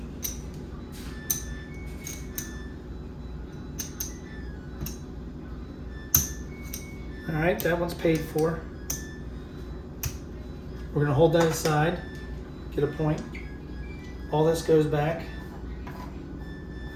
All right, that one's paid for. We're gonna hold that aside, get a point. All this goes back.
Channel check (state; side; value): identical; both; correlation 1.00